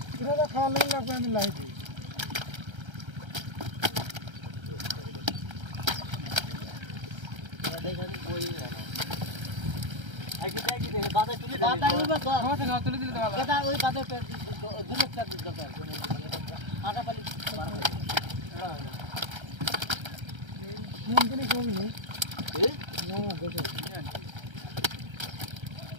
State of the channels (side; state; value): left; late; 1.3 ms